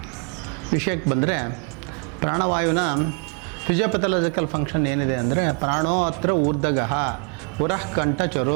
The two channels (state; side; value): quieter; left; 36.9 dB